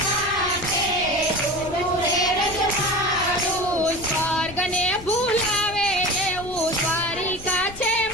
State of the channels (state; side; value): noise; left; rumble, 16 dB below the sound